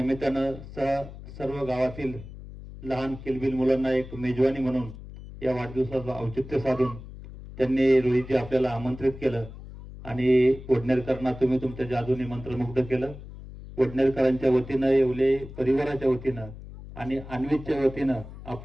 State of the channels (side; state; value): left; noise; hum, 14 dB below the sound